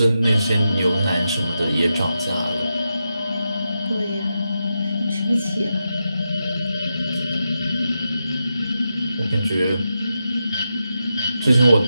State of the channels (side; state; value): both; inverted; correlation -0.88